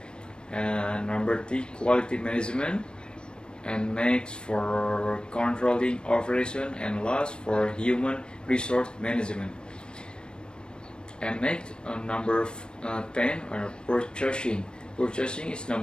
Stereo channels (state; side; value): late; right; 0.053 ms